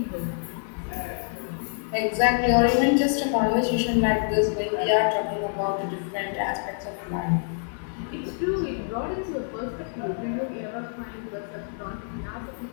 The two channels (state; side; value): silent; right; 61 dB below the other